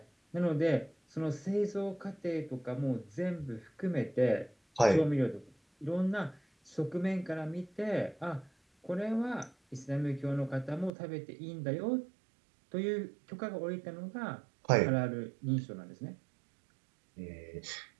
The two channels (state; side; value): drops out; left; at 10.9 s